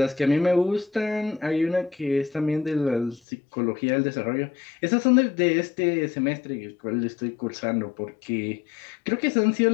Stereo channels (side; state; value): right; drops out; at 3.2 s